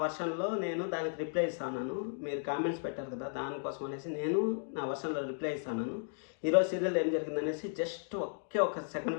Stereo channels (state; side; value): silent; right; digital silence